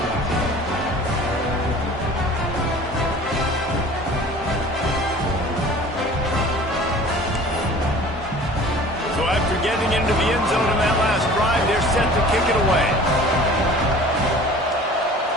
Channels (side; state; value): both; normal; correlation 0.45